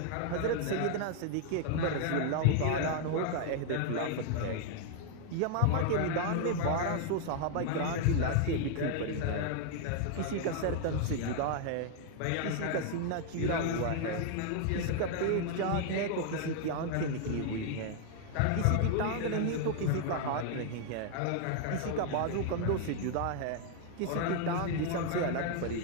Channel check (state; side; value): different; both; correlation 0.00